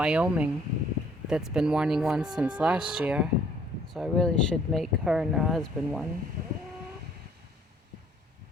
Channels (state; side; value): normal; both; correlation 0.61